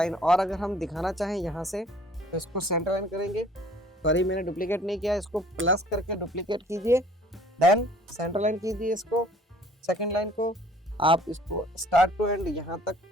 और अगर हम दिखाना चाहें यहाँ से तो इसको सेंटर लाइन करेंगे। सॉरी मैंने डुप्लीकेट नहीं किया, इसको प्लस करके डुप्लीकेट कीजिए, देन सेंटर लाइन कीजिए इसको, सेकंड लाइन को आप इसको स्टार्ट टू एंड यहाँ तक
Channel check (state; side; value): normal; both; correlation 0.55